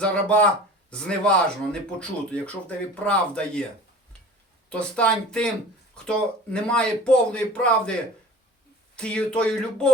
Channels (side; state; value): both; normal; correlation 0.41